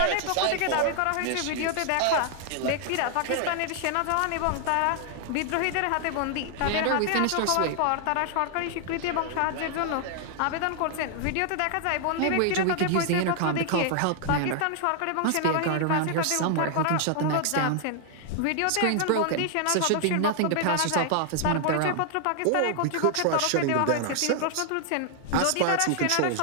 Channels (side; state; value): both; different; correlation 0.00